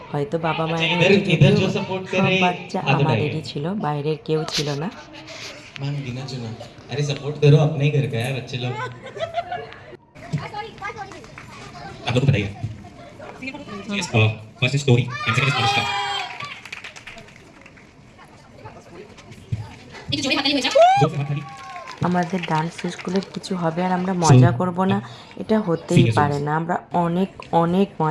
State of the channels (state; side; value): identical; both; correlation 1.00